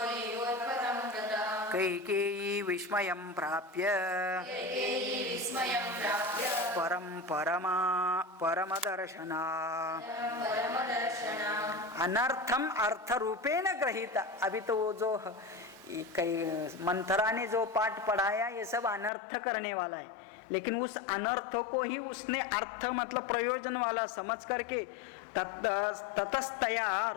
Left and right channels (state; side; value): drops out; right; at 19.1 s